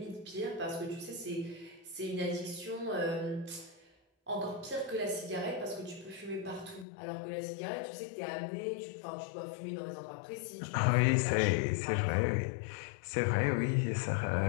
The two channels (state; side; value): drops out; right; at 6.9 s